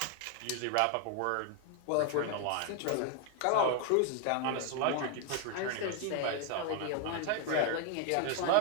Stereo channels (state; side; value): different; both; correlation 0.01